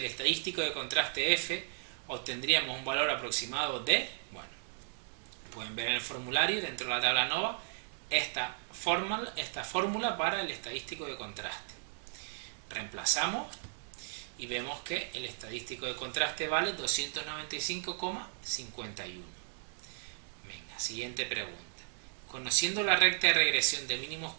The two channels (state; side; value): silent; left; digital silence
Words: estadístico de contraste F, obtendríamos un valor aproximado de, bueno, pueden ver en el formulario dentro de la tabla NOVA esta fórmula para el estadístico de contraste. Reemplazamos y vemos que el estadístico de contraste vale 295,51. Venga, siguiente pregunta. Conociendo la recta de regresión de mínimos